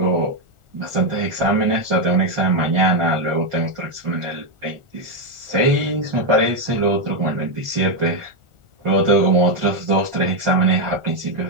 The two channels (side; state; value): left; late; 1.4 ms